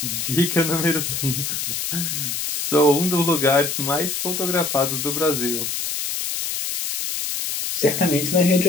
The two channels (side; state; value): left; noise; hiss, 2 dB below the sound